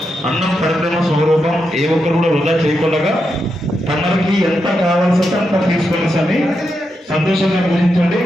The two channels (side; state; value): both; normal; correlation 0.85